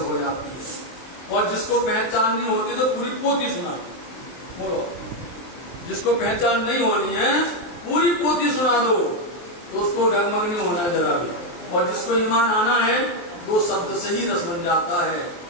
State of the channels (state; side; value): late; right; 23 ms